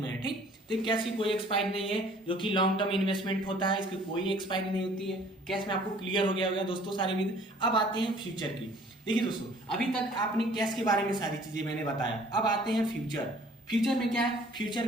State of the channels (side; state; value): both; normal; correlation 0.54